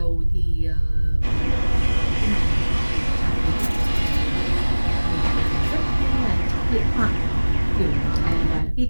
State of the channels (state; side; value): inverted; both; correlation -1.00